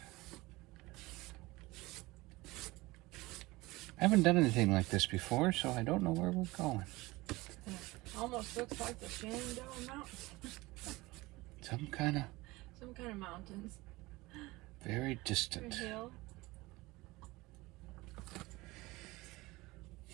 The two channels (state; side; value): quieter; left; 21.1 dB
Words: I haven't done anything like this before, so I don't know where we're going. Almost looks like the Shenandoah Mountains. Some kind of mountains. very distant. Hill.